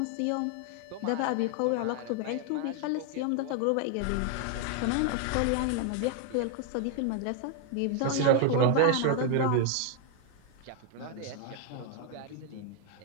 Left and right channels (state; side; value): different; both; correlation 0.00